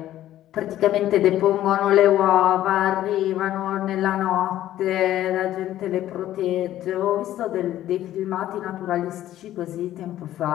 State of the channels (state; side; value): quieter; right; 13.1 dB